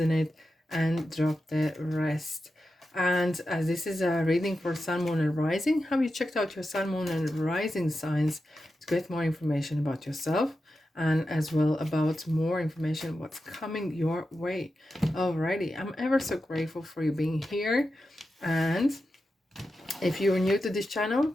and drop the rest. And as this is a reading for Sun, Moon and Rising, have you checked out your Sun, Moon and Rising signs to get more information about yourself and as well about more information what's coming your way. Alrighty, I'm ever so grateful for you being here, and if you are new to this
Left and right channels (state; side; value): normal; both; correlation 0.90